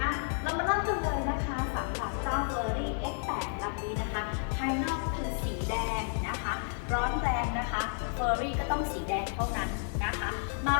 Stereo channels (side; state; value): right; silent; 56 dB below the other